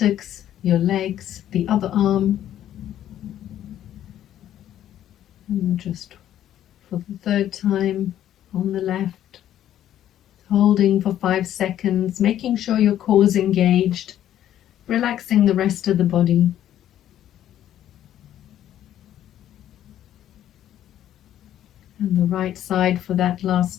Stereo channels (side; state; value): right; quieter; 11.6 dB